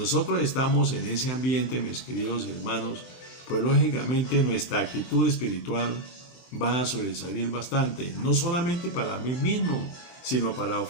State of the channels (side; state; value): right; late; 23 ms